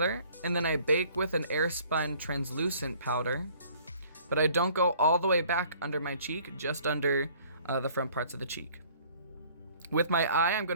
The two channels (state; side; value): inverted; both; correlation -0.55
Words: and then I bake with an airspun translucent powder, but I don't go all the way back under my cheek, just under the front parts of the cheek. With my eye, I'm